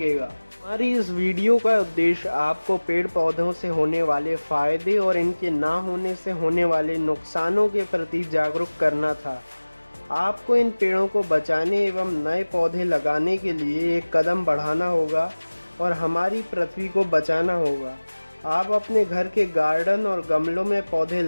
हमारी इस वीडियो का उद्देश्य आपको पेड़ पौधों से होने वाले फ़ायदे और इनके ना होने से होने वाले नुकसानों के प्रति जागरूक करना था। आपको इन पेड़ों को बचाने एवं नए पौधे लगाने के लिए एक कदम बढ़ाना होगा और हमारी पृथ्वी को बचाना होगा। आप अपने घर के गार्डन और गमलों में पौधे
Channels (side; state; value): both; inverted; correlation -1.00